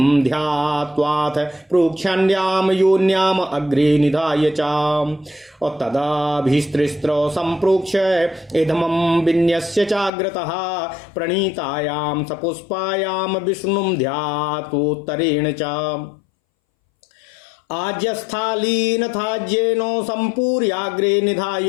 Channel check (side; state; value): right; drops out; at 10.1 s